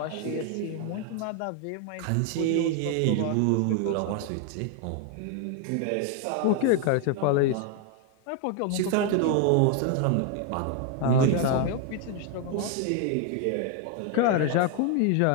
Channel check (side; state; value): both; different; correlation 0.01